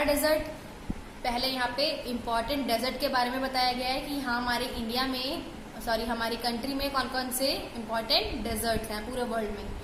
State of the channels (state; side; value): identical; both; correlation 1.00